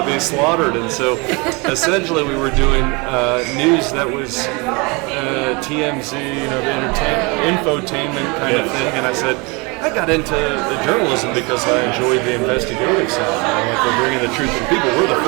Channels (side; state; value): left; quieter; 28.1 dB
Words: be slaughtered, and so essentially we were doing news that was TMZ, the infotainment kind of thing, and I said, I got into journalism because I enjoyed the investigative side. Like we're bringing the truth to people. We're the